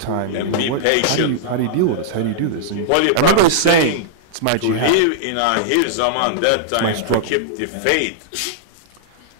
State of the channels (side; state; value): both; different; correlation -0.02